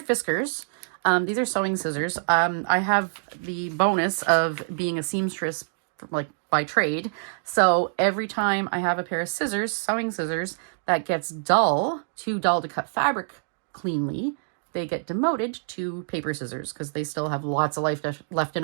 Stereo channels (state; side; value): silent; left; digital silence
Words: Fiskars. These are sewing scissors. I have the bonus of being a seamstress like by trade. So every time I have a pair of scissors, sewing scissors, that gets too dull to cut fabric cleanly, they get demoted to paper scissors because they still have lots of life left in